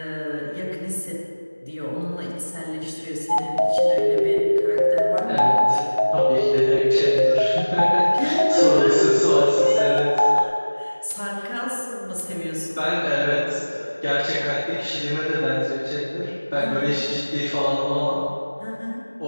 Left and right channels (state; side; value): inverted; both; correlation -1.00